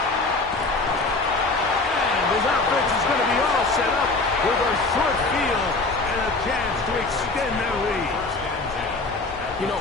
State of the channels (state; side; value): quieter; right; 3.4 dB